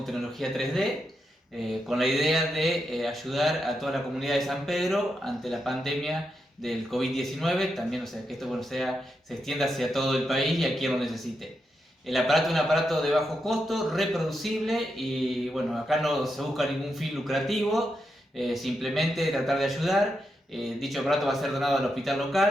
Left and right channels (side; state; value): both; normal; correlation 0.85